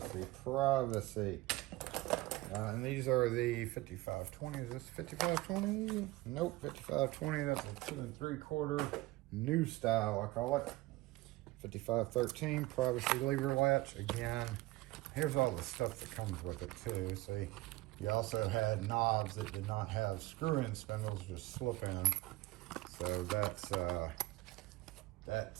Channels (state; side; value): quieter; left; 19.3 dB